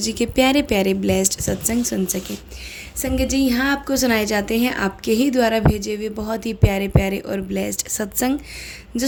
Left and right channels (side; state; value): both; identical; correlation 1.00